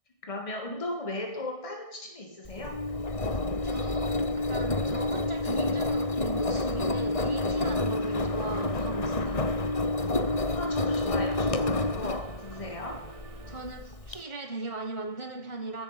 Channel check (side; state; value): right; late; 1.6 ms